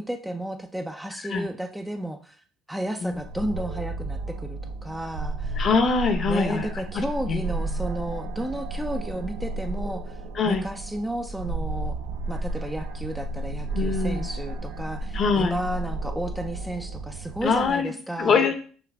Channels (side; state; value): both; normal; correlation 0.71